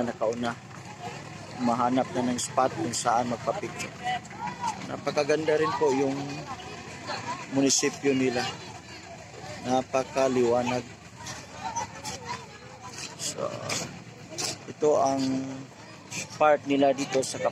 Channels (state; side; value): identical; both; correlation 1.00